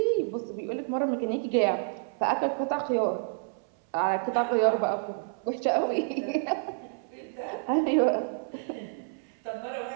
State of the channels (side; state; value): left; silent; 59 dB below the other